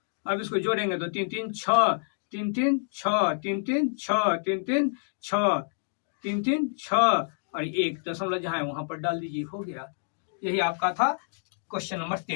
अब इसको जोड़ेंगे तो 3 3 6, 3 3 6, 3 3 6, 3 3 6, 3 3 6 और 1 दशमलव जहां है वहां पर डाल दीजिए, हो गया। यही आपका था क्वेश्चन नंबर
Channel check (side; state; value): right; silent; digital silence